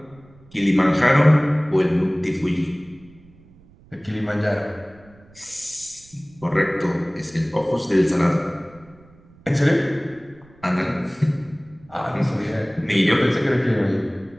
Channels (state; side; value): noise; right; rumble, 27 dB below the sound